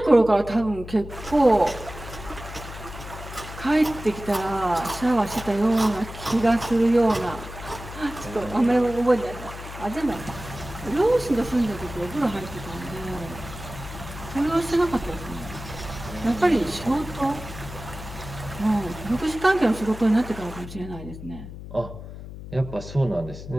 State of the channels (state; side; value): noise; left; hum, 12 dB below the sound